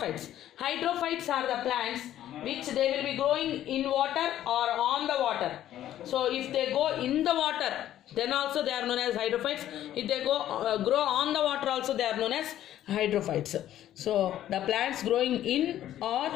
Hydrophytes are the plants which they will be growing in water or on the water. So if they go in the water, then also they are known as hydrophytes. If they go grow on the water, also they are known as hydrophytes. So the plants growing in or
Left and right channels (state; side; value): quieter; right; 12.3 dB